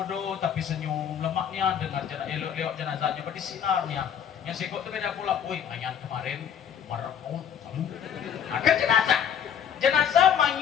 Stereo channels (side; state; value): right; quieter; 8.6 dB